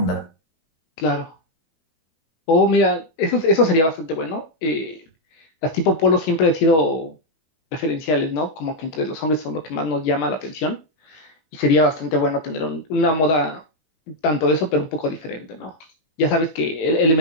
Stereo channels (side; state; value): right; late; 19 ms